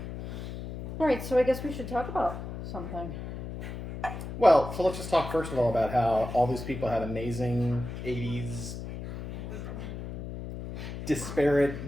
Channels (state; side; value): noise; left; hum, 8 dB below the sound